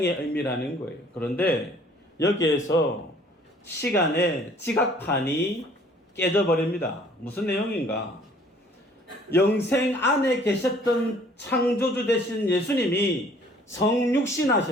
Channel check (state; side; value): normal; both; correlation 0.56